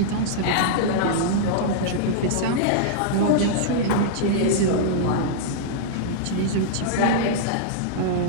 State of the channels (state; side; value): different; both; correlation -0.02